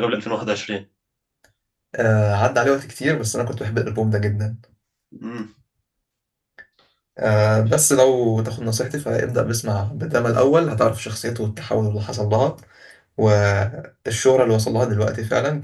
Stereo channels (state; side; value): identical; both; correlation 1.00